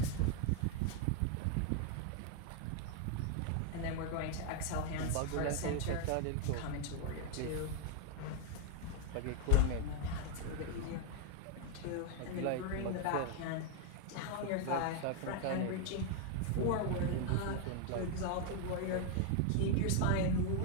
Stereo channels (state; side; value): different; both; correlation 0.00